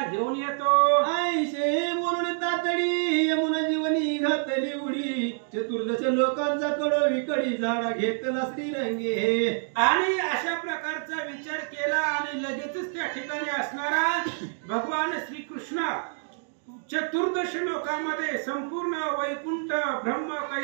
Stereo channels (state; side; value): silent; left; digital silence